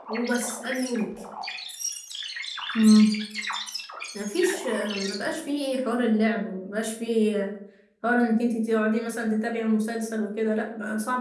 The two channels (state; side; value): identical; both; correlation 1.00